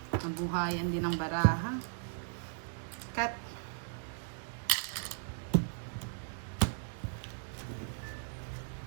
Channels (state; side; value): silent; left; digital silence